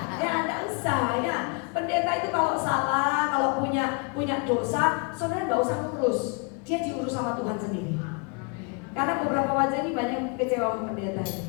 Ya, enggak usah ya. Pendeta itu kalau salah, kalau punya dosa, saudara nggak usah ngurus. Dia diurus sama Tuhan sendiri. Karena beberapa wajah ini banyak kecewa sama pendeta.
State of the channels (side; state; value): right; quieter; 33.9 dB